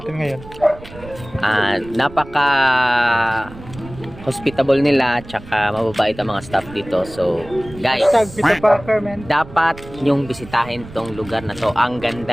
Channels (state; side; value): noise; right; rumble, 17 dB below the sound